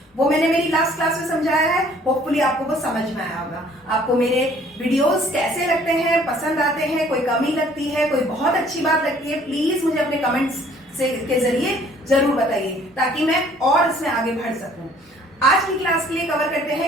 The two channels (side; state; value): both; normal; correlation 0.57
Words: वो मैंने मेरी लास्ट क्लास में समझाया है, होपफुली आपको वो समझ में आया होगा। आपको मेरे वीडियोस कैसे लगते हैं, पसंद आते हैं, कोई कमी लगती है, कोई बहुत अच्छी बात लगती है, प्लीज मुझे अपने कमेंट्स के जरिए जरूर बताइए ताकि मैं और इसमें आगे बढ़ सकूं। आज की क्लास के लिए कवर करते